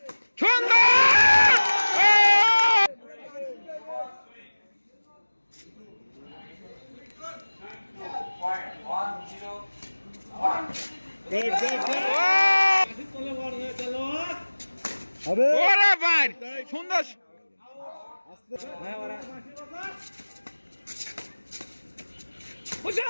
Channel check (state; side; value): inverted; both; correlation -1.00